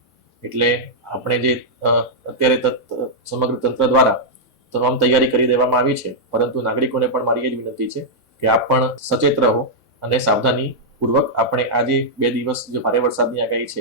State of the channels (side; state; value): both; normal; correlation -0.07